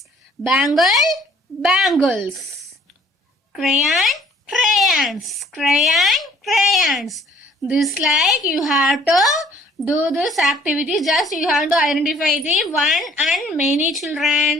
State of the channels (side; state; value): both; normal; correlation 0.58